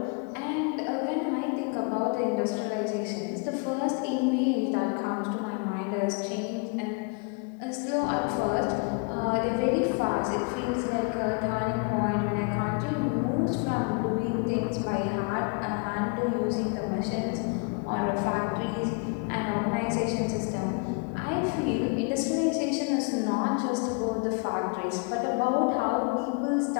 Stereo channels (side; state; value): right; quieter; 32.6 dB